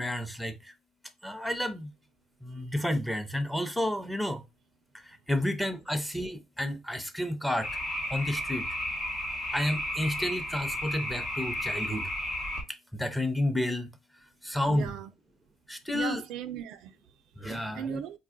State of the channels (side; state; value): both; normal; correlation 0.88